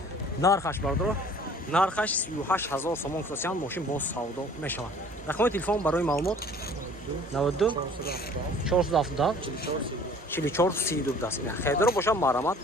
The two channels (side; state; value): both; normal; correlation 0.51